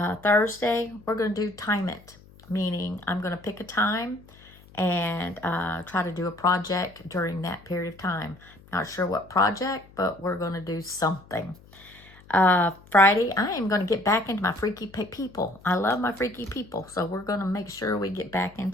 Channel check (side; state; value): left; noise; hum, 24 dB below the sound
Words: Thursday, we're going to do time it, meaning I'm going to pick a time and try to do a project during that period of time. Not sure what project, but we're going to do something. Friday, I am going to get back into my freaky people. I love my freaky people, so we're going to make sure we get back